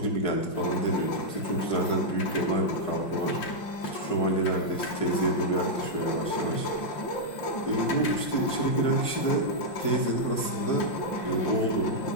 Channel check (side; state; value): right; late; 5.7 ms